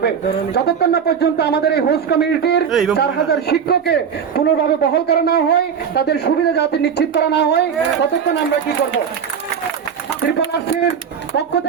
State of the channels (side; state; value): left; quieter; 7.2 dB